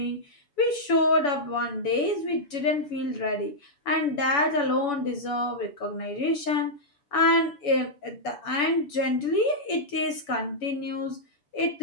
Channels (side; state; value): right; late; 7.0 ms